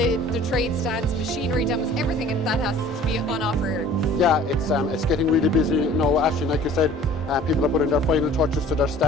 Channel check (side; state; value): both; normal; correlation 0.48